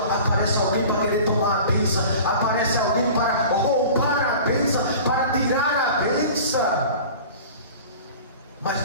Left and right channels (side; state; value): both; inverted; correlation -0.40